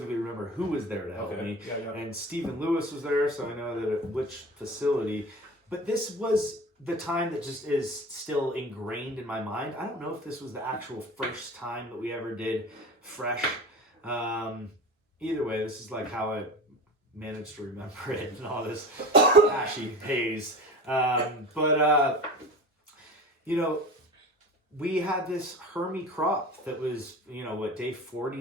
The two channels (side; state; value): both; normal; correlation 0.34